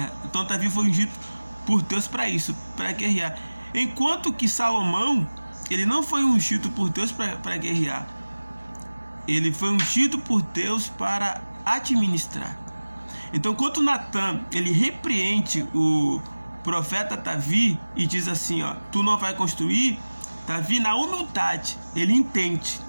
Então Davi foi ungido por Deus para isso, para guerrear. Enquanto que Salomão, ele não foi ungido por Deus para guerrear. Ele foi ungido por Deus para administrar. Então, quando Natã, ele repreende o profeta Davi e diz assim: ó, tu não vai construir, Davi, na humildade, ele entende,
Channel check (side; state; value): both; inverted; correlation -1.00